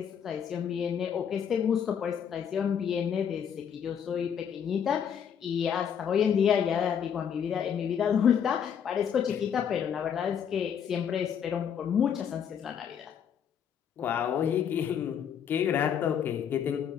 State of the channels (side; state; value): right; quieter; 8.1 dB